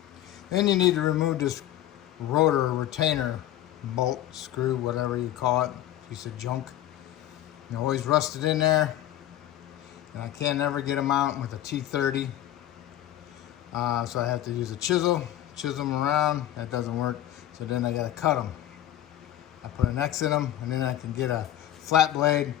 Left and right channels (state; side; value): quieter; right; 12.5 dB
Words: Then you need to remove this rotor retainer bolt, screw, whatever you call it, piece of junk. You always rusted in there, and I can't never get them out with a T30. So I have to use a chisel them around. That doesn't work, so then I gotta cut them. I put an X in them, and then I can get a flat blade